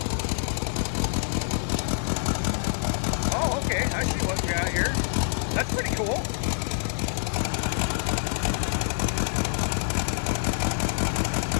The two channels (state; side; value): silent; right; digital silence